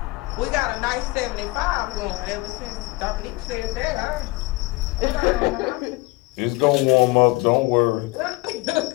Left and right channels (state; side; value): quieter; right; 22.6 dB